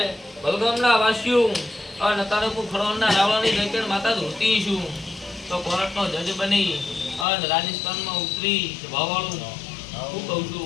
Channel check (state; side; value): drops out; right; at 7.2 s